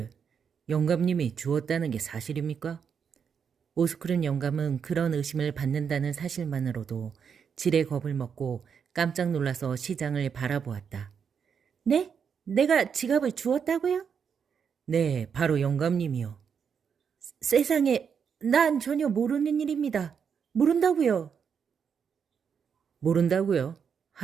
영감님이 주었다는 게 사실입니까? 오스크른 영감은 그런 의심을 받는다는 사실만으로도 지레 겁을 먹고 깜짝 놀라서 시장을 바라보았다. 네? 내가 지갑을 주었다고요? 네, 바로 영감님이요. 세상에, 난 전혀 모르는 일입니다. 모른다고요. 모른다고요?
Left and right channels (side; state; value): left; quieter; 6.9 dB